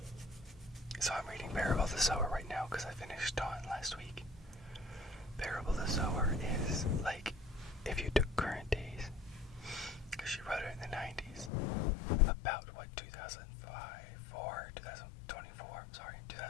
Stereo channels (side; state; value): right; drops out; at 11.5 s